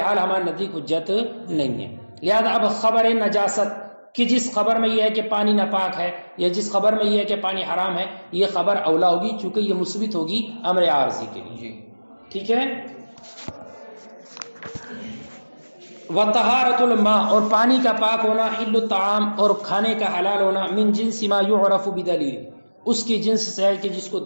حال ہمارے نزدیک حجت نہیں ہے۔ لہذا اب خبر نجاست کہ جس خبر میں یہ ہے کہ پانی ناپاک ہے یا جس خبر میں یہ ہے کہ پانی حرام ہے، یہ خبر اولا ہوگی چونکہ یہ مثبت ہوگی امر عارضی کے لیے، ٹھیک ہے۔ وطہارت الماء، اور پانی کا پاک ہونا، حل الطعام، اور کھانے کا حلال ہونا، من جنس ما یعرف بدلیل، اس کی جنس سے ہے کہ جس کو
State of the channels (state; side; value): inverted; both; correlation -1.00